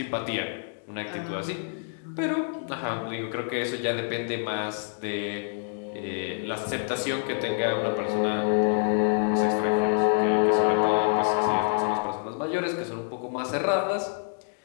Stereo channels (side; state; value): right; silent; digital silence